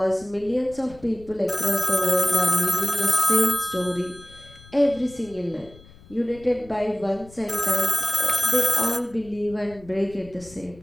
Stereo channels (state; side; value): noise; left; rumble, 22 dB below the sound